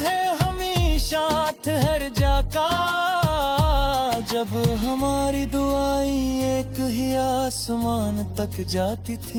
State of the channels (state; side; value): identical; both; correlation 1.00